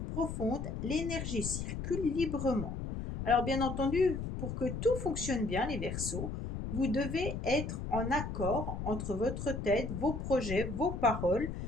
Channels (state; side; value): noise; left; rumble, 5 dB below the sound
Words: profondes, l'énergie circule librement. Alors bien entendu, pour que tout fonctionne bien, les Verseaux, vous devez être en accord entre votre tête, vos projets, vos paroles,